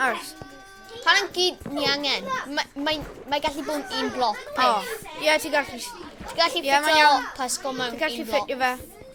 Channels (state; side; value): identical; both; correlation 1.00